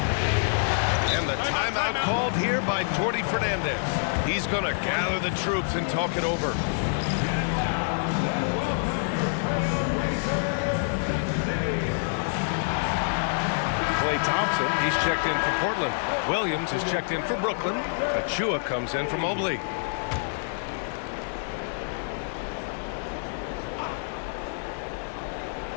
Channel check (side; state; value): right; silent; digital silence